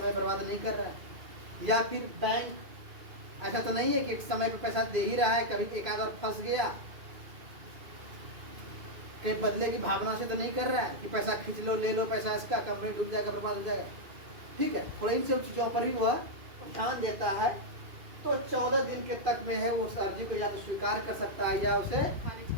बर्बाद नहीं कर रहा है। या फिर बैंक ऐसा तो नहीं है कि एक समय पे पैसा दे ही रहा है, कभी एक आध और फंस गया, कहीं बदले की भावना से तो नहीं कर रहा है कि पैसा खींच लो, ले लो पैसा इसका, कंपनी डूब जाएगा, बर्बाद हो जाएगा, ठीक है। थोड़ा इन सब चीजों पर भी वह ध्यान देता है। तो 14 दिन के तक में है वो उस अर्जी को या तो स्वीकार कर सकता है या उसे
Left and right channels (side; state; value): left; late; 2.4 ms